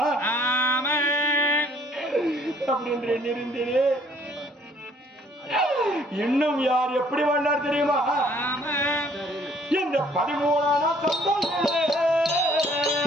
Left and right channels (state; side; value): normal; both; correlation 0.60